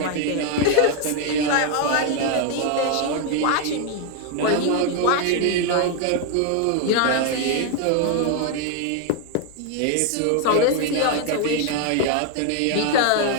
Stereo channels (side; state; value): both; different; correlation 0.01